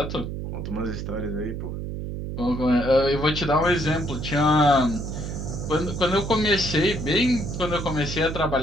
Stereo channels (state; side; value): noise; right; hum, 6 dB below the sound